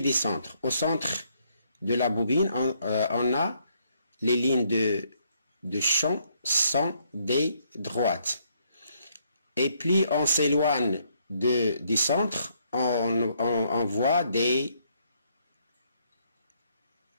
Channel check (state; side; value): inverted; both; correlation -0.71